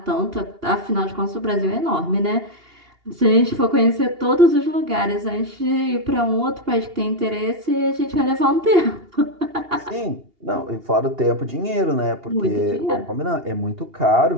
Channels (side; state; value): left; late; 2.8 ms